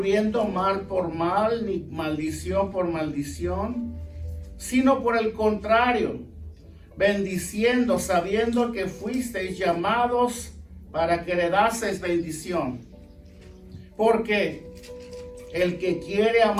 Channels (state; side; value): identical; both; correlation 1.00